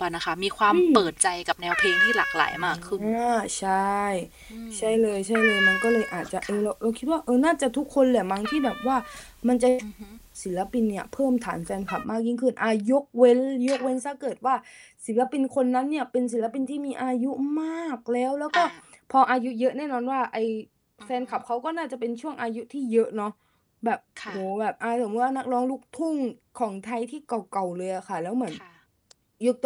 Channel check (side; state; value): both; identical; correlation 1.00